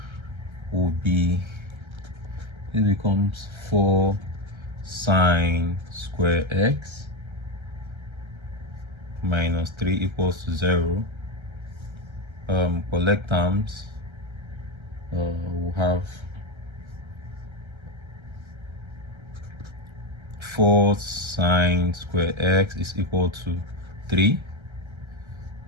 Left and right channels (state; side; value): late; left; 1.3 ms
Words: will be, it becomes 4 sine square x minus 3 equals 0. Collect terms, we'll have 4 sine square x is equal to 3.